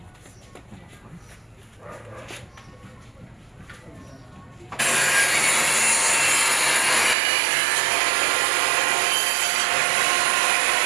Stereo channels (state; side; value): drops out; left; at 7.2 s